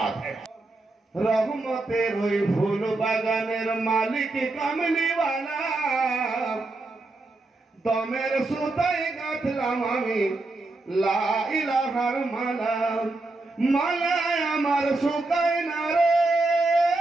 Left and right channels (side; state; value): left; quieter; 3.1 dB